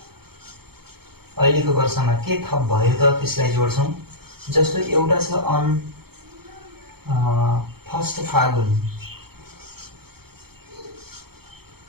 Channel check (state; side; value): late; left; 0.95 ms